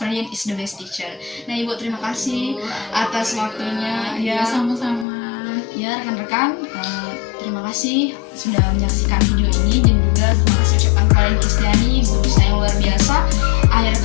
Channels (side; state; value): right; drops out; at 5.1 s